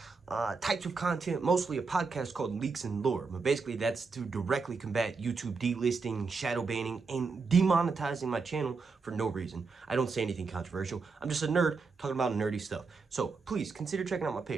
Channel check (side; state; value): left; quieter; 4.6 dB